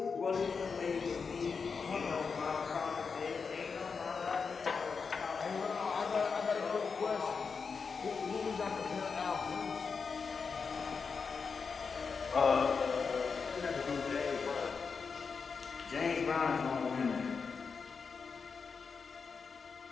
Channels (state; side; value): quieter; right; 5.3 dB